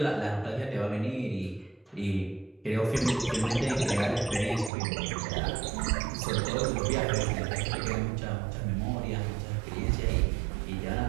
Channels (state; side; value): drops out; left; at 4.7 s